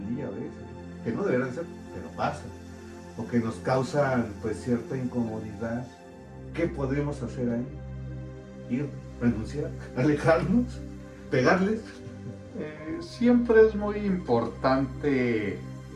día a veces, que no deberían ser, pero pasa, o que nos causan pues cierta incomodidad. ¿Qué podemos hacer ahí? Ir, renunciar, alejarnos, pegarles. Siempre es muy importante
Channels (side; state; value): both; identical; correlation 1.00